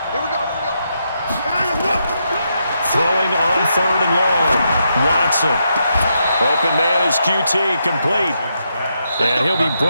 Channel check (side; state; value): both; inverted; correlation -0.81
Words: Throwing on 3rd and long. Watson. Open man is QT, complete. And he'll be